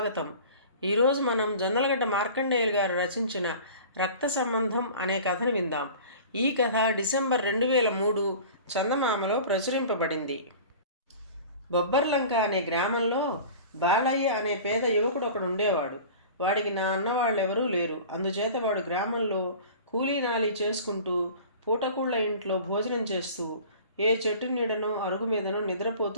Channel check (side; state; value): both; inverted; correlation -0.41